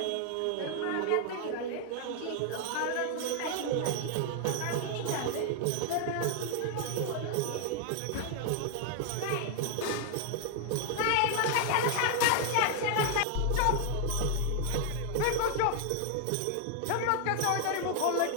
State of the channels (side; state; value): both; different; correlation 0.00